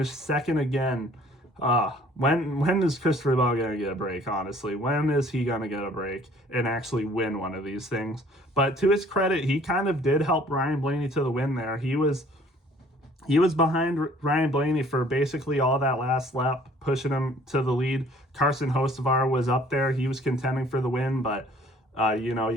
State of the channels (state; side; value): normal; both; correlation 0.55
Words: second again. When is Christopher Bell going to get a break, honestly? When is he going to get a break and actually win one of these things? But to his credit, he kind of did help Ryan Blaney to the win there. He was behind Ryan Blaney for basically all that last lap, pushing him to the lead. Carson Hocevar was up there. He was contending for the win, but,